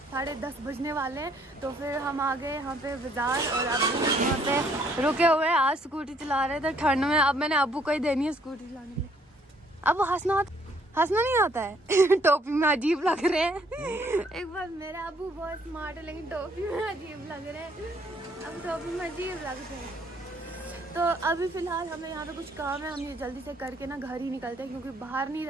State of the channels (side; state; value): both; normal; correlation 0.65